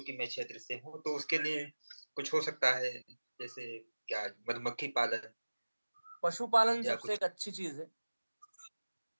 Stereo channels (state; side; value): inverted; both; correlation -1.00